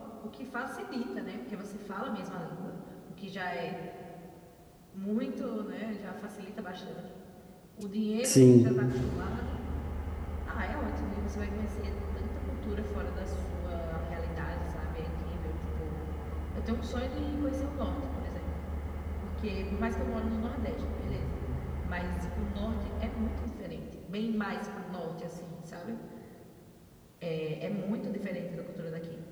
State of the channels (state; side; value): identical; both; correlation 1.00